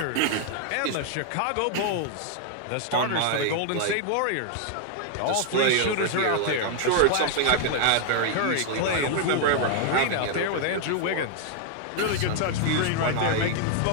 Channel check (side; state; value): both; different; correlation 0.00